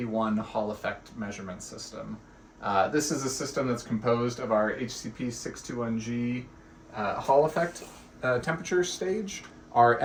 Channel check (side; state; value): both; identical; correlation 1.00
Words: Hall effect measurement system. This is a system that's composed of our HCP 621G Hall effect temperature stage, our